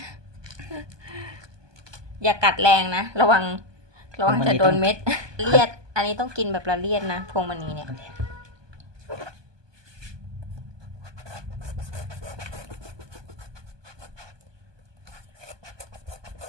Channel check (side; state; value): left; late; 1.2 ms